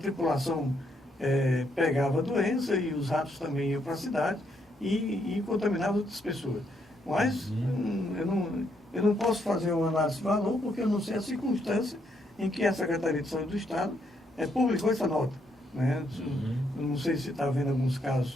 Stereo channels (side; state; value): both; normal; correlation 0.75